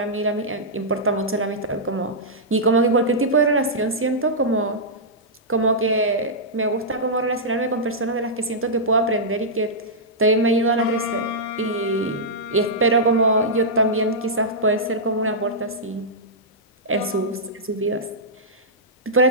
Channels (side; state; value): both; normal; correlation -0.12